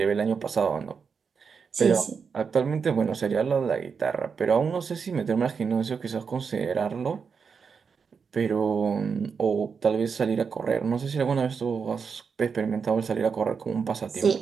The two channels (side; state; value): left; quieter; 5.9 dB